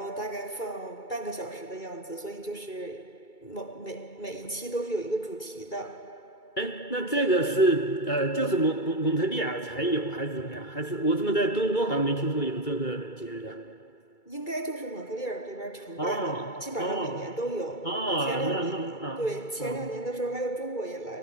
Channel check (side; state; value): right; late; 2.3 ms